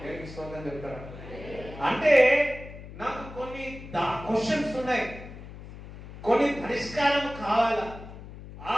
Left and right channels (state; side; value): noise; left; hum, 14 dB below the sound